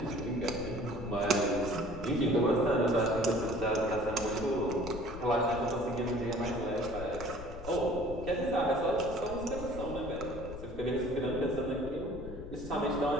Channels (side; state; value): left; noise; rumble, 11 dB below the sound